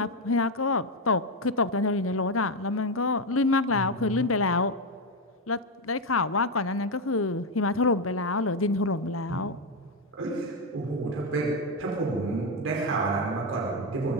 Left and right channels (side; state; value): both; normal; correlation 0.07